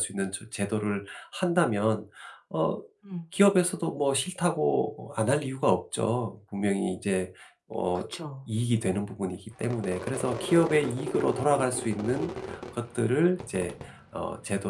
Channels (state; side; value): identical; both; correlation 1.00